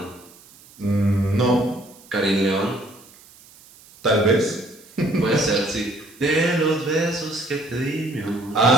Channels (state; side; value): noise; right; hiss, 24 dB below the sound